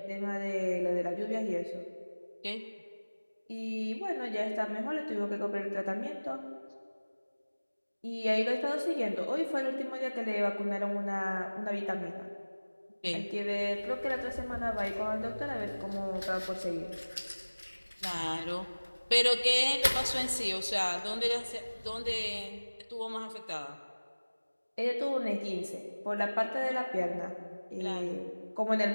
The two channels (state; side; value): inverted; both; correlation -1.00